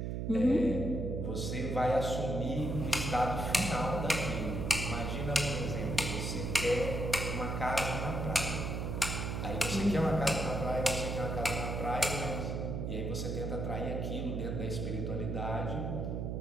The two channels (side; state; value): right; noise; hum, 2 dB below the sound